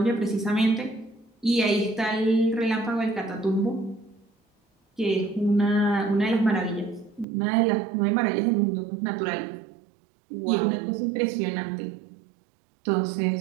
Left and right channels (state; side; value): drops out; left; at 7.2 s